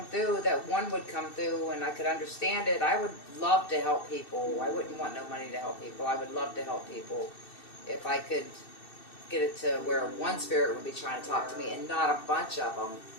through, that one would come through and I could understand it. I would love to help people. I wouldn't want no money to help people. I would love to help people if I could get it to where one spirit would be trying to talk to me and not a bunch of them.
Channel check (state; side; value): late; right; 2.7 ms